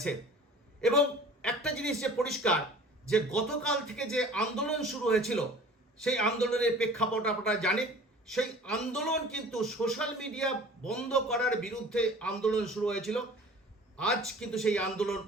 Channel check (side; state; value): both; normal; correlation 0.45